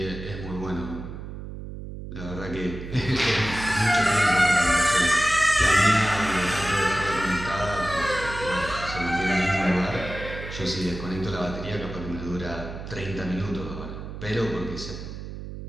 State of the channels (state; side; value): noise; right; hum, 10 dB below the sound